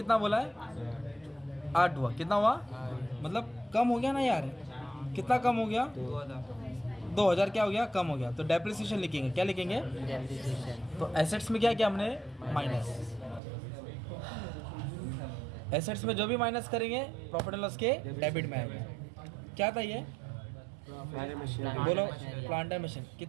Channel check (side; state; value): left; drops out; at 13.4 s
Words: बोला है? 8 हुआ। कितना हुआ? मतलब कम हो गया ना यार। कितना कम हो गया? 2000 क्या हो गया? कम हो गया। तो डेप्रिसिएशन लिखेंगे। क्या लिखेंगे? तो एसेट्स में क्या किया हमने? माइनस। एसेट्स में जो भी माइनस करेंगे प्रॉफिट एंड लॉस के डेबिट में आएगा। क्या था ये? बोलो, प्लांटर मशीन।